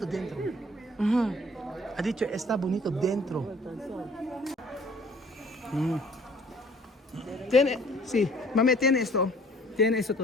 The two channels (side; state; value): both; normal; correlation 0.55